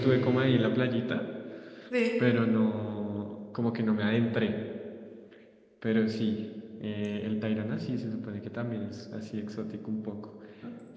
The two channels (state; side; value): identical; both; correlation 1.00